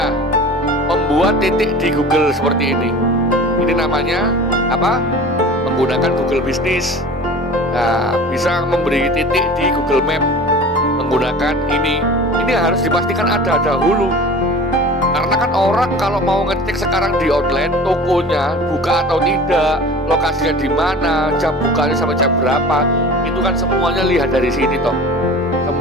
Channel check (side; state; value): both; normal; correlation 0.39